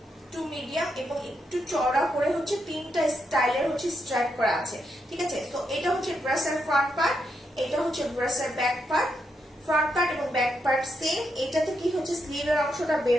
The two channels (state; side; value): normal; both; correlation 0.81